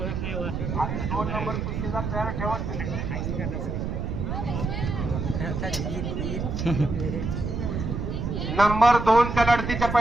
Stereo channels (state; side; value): noise; right; rumble, 3 dB below the sound